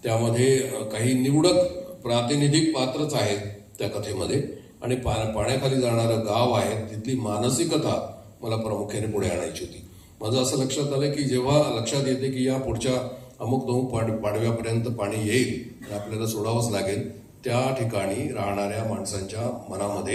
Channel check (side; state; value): both; identical; correlation 1.00